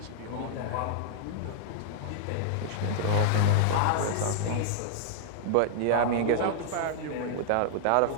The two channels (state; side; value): different; both; correlation -0.01